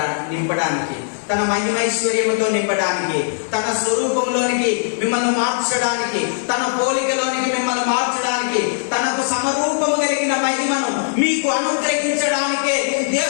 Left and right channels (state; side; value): silent; right; digital silence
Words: నింపడానికి, తన మహిమైశ్వర్యముతో నింపడానికి, తన స్వరూపంలోనికి మిమ్మల్ని మార్చడానికి, తన పోలికలోనికి మిమ్మల్ని మార్చడానికి, తనకు సమరూపము కలిగిన మహిమను మీకు అనుగ్రహించడానికే